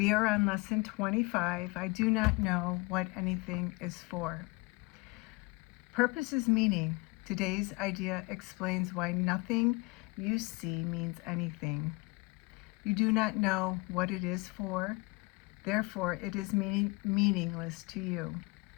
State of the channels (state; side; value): quieter; right; 26.1 dB